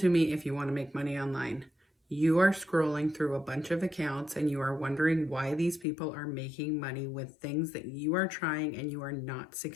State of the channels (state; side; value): drops out; right; at 5.9 s